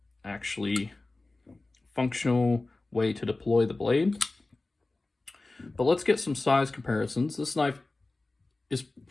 actually functional way to deploy the blade. But let's get some size comparisons. This knife is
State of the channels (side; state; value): right; quieter; 3.2 dB